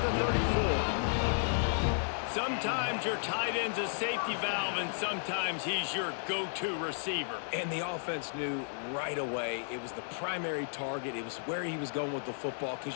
the 34. Sometimes your tight end's a safety valve, and sometimes he's your go-to receiver. And the offense knew right away it was the primary target. It was where he was going with the football,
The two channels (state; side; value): silent; right; digital silence